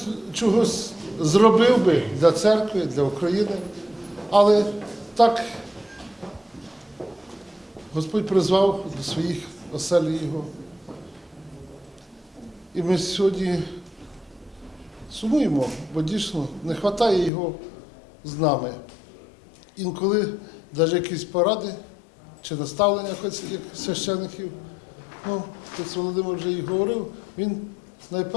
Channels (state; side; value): drops out; right; at 17.3 s